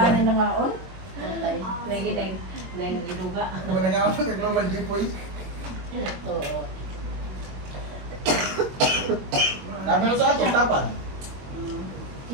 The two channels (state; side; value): late; left; 21 ms